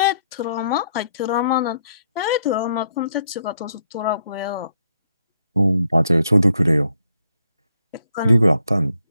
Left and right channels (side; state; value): both; inverted; correlation -0.73